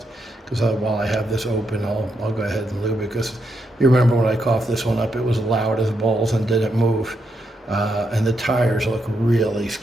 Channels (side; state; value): both; normal; correlation 0.81